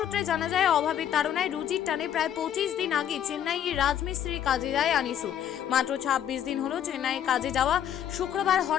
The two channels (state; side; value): quieter; right; 10.0 dB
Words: জানা যায়, অভাবের তাড়নায় রুজির টানে প্রায় 25 দিন আগে চেন্নাইয়ে রাজমিস্ত্রির কাজে যায় আনিসুর। মাত্র 26 দিন হলো চেন্নাইয়ে কাজে যাওয়া। শুক্রবার